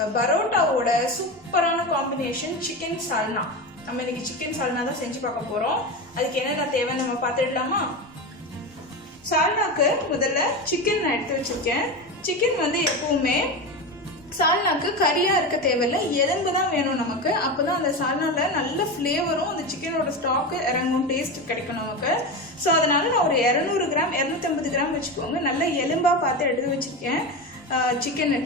பரோட்டாவோட சூப்பரான காம்பினேஷன் சிக்கன் சால்னா. நம்ம இன்னைக்கு சிக்கன் சால்னா தான் செஞ்சு பார்க்க போறோம். அதுக்கு என்னென்ன தேவைன்னு நம்ம பார்த்துடலாமா? சால்னாக்கு முதல்ல சிக்கன் நான் எடுத்து வச்சிருக்கேன். சிக்கன் வந்து எப்பவுமே சால்னாக்கு கறியா இருக்க தேவையில்லை, எலும்பு தான் வேணும் நமக்கு. அப்பதான் அந்த சால்னால நல்ல ஃப்ளேவரும் அந்த சிக்கனோட ஸ்டாக்கு இறங்கும், டேஸ்ட் கிடைக்கும் நமக்கு. ஸோ அதனால நான் ஒரு 200 கிராம் 250 கிராம் வச்சுக்கோங்க. நல்ல எலும்பா பார்த்து எடுத்து வச்சிருக்கேன். சிக்கன்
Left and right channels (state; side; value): normal; both; correlation 0.21